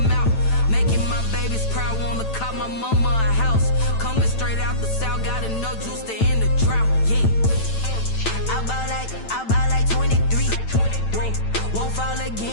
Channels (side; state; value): right; late; 9.0 ms